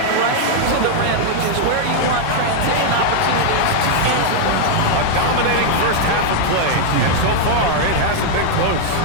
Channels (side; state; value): both; different; correlation -0.01